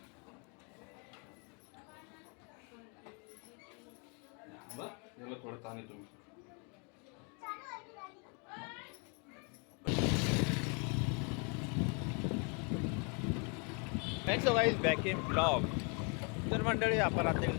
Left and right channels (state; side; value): quieter; right; 35.5 dB